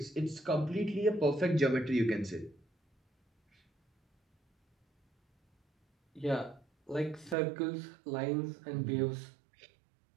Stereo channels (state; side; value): drops out; left; at 7.4 s